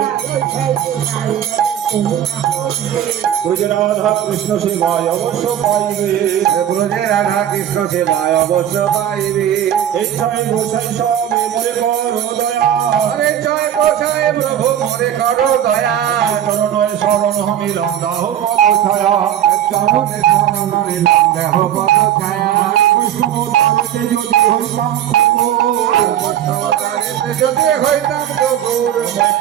রাধা কৃষ্ণ সেবায় অবশ্য পাইবে ব্রজে রাধা কৃষ্ণ সেবায় অবশ্য পাইবে এই ছয় গোসাই সবে মরে বড় দয়া হরে জয় গোসাই প্রভু মরে করো দয়া চরণয় শরণ হমিলাম দাহ ছায়া চরণে শরণ নিলাম দেহ পদ ছায়া বৈষ্ণব তালতে যদি হইতাম বৈষ্ণবতারেতে যদি হইতাম ঠাকুর আমায়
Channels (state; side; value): quieter; left; 10.6 dB